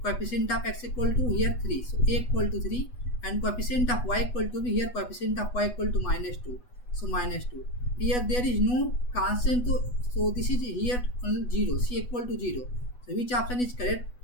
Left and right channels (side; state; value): right; late; 8.1 ms